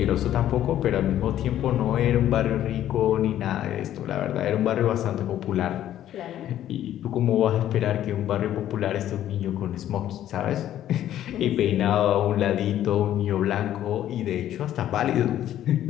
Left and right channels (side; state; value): right; quieter; 11.9 dB